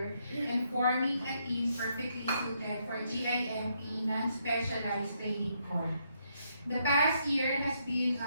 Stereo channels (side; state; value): both; inverted; correlation -0.76